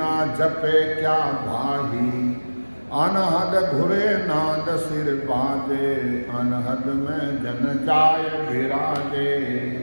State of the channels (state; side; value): inverted; both; correlation -1.00